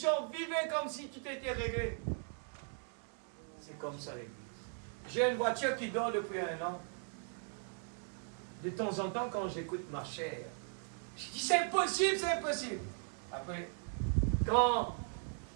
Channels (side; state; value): left; silent; 52 dB below the other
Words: Vivez comme si tout était réglé. C'est comme ça l'église. J'ai une voiture qui dort depuis 1 an. De temps en temps, quand j'écoute ma chère, je dis c'est impossible, c'est impossible. Après, quand